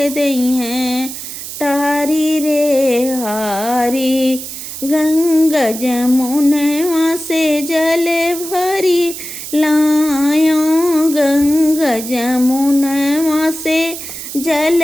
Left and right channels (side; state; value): right; noise; hiss, 9 dB below the sound